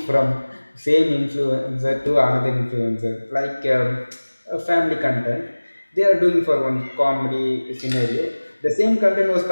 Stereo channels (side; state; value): both; inverted; correlation -1.00